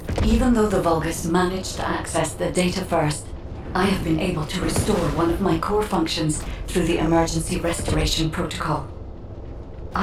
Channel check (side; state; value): both; identical; correlation 1.00